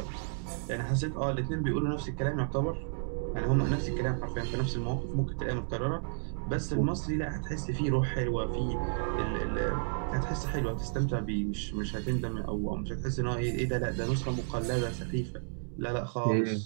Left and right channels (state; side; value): silent; left; digital silence